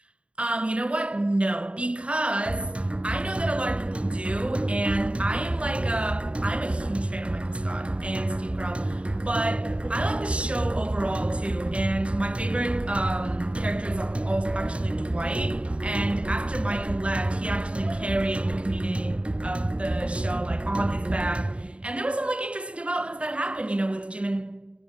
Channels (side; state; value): left; late; 0.060 ms